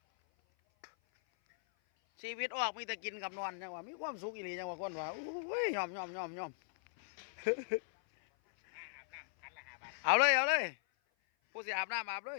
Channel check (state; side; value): silent; right; 52 dB below the other